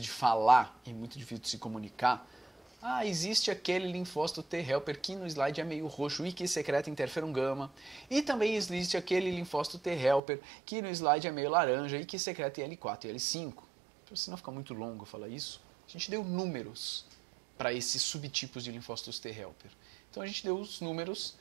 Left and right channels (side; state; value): left; drops out; at 10.2 s